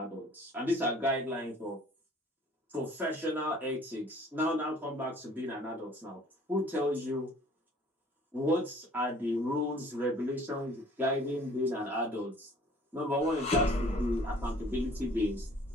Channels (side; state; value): both; normal; correlation 0.54